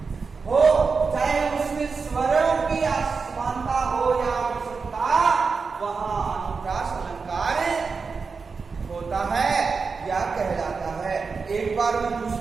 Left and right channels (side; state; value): left; quieter; 4.9 dB